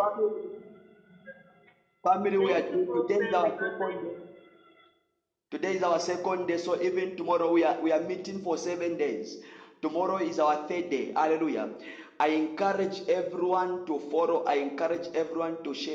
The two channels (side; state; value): both; identical; correlation 1.00